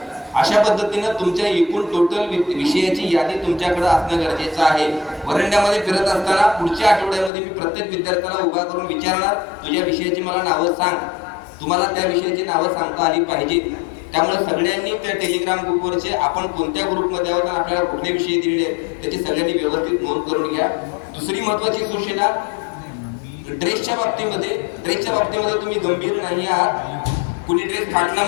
अशा पद्धतीनं तुमच्या एकूण टोटल विषयाची यादी तुमच्याकडे असणं गरजेचं आहे. वरंड्यामध्ये फिरत असताना पुढच्या आठवड्यामध्ये मी प्रत्येक विद्यार्थ्याला उभा करून विचारणार, तुझ्या विषयाची मला नावं सांग. तुम्हाला त्या विषयाची नावं सांगता आली पाहिजेत. त्यामुळे सगळ्यांनी त्या टेलिग्राम ग्रुपवरचे आपण कोणत्या ग्रुपमध्ये आहोत आणि आपल्याला कुठले विषय दिलेले आहेत त्याची सगळ्यांनी व्यवस्थित नोंद करून घ्या. दुसरी महत्वाची सूचना, ड्रेसच्या बाबतीमध्ये तुम्ही गंभीर नाही आहात. कुणी ड्रेस फाटला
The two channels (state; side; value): drops out; right; at 7.3 s